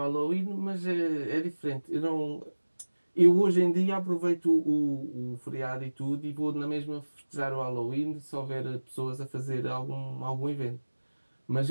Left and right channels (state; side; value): inverted; both; correlation -1.00